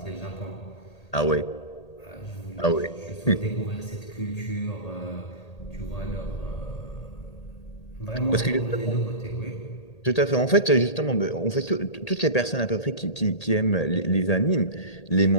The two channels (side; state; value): right; late; 1.8 ms